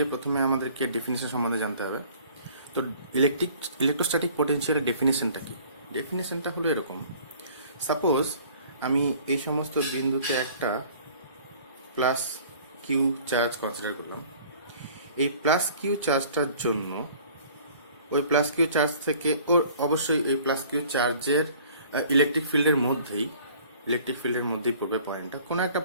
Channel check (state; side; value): inverted; both; correlation -0.51